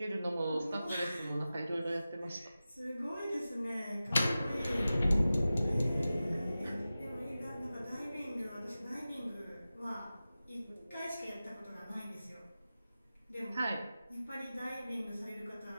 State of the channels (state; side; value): inverted; both; correlation -0.95